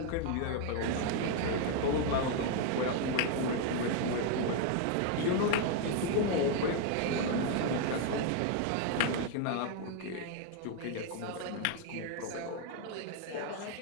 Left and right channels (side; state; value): both; different; correlation 0.01